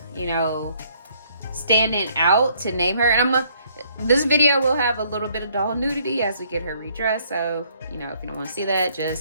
you know, standing out to name her. And this video will have a little bit of doll nudity as we get her redressed. So, you know, if you don't want to see that,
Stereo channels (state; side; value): inverted; both; correlation -0.65